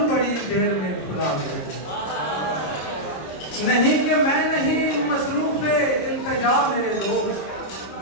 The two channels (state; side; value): late; right; 26 ms